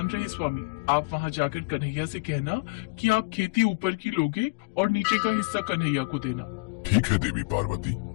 रहे स्वामी, आप वहाँ जाकर कन्हैया से कहना कि आप खेती ऊपर की लोगे और नीचे का हिस्सा कन्हैया को देना। ठीक है देवी पार्वती,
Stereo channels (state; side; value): quieter; right; 28.5 dB